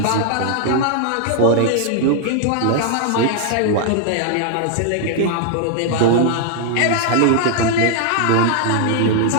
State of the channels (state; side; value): different; both; correlation 0.00